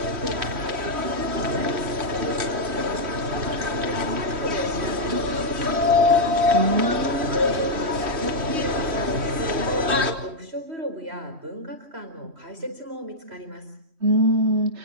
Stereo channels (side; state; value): left; late; 3.1 ms